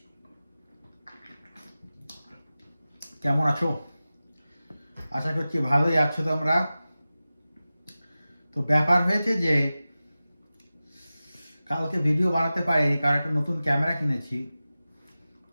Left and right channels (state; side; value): inverted; both; correlation -0.95